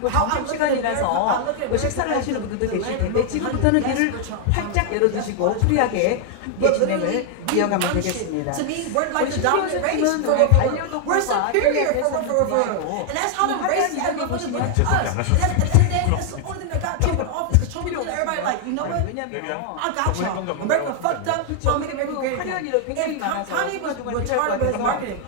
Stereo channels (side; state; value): both; different; correlation 0.00